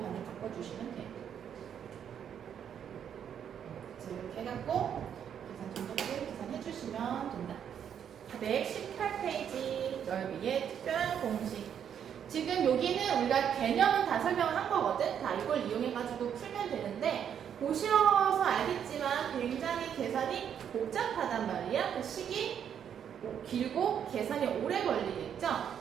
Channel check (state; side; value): quieter; left; 8.6 dB